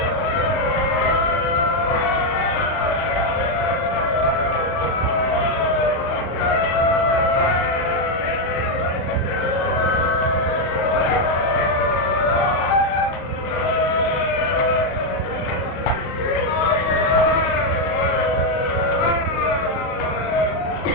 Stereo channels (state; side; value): late; right; 38 ms